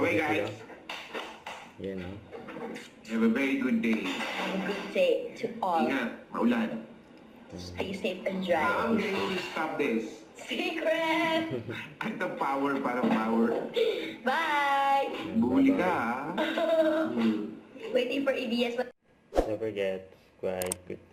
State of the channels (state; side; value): identical; both; correlation 1.00